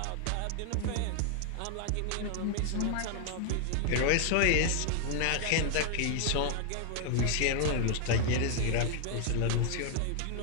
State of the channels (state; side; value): different; both; correlation 0.00